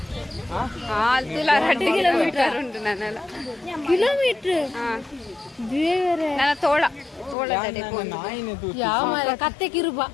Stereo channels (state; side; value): drops out; right; at 7.4 s